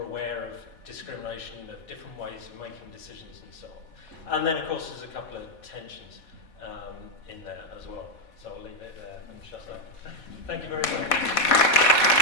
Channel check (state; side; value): late; right; 4.2 ms